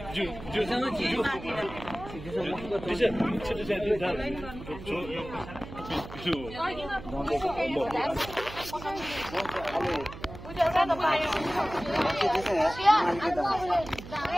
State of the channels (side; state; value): right; noise; hum, 13 dB below the sound